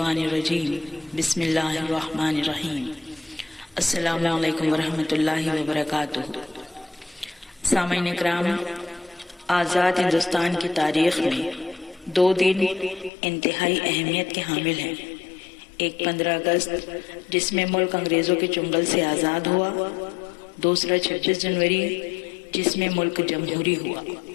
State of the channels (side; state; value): right; drops out; at 13.1 s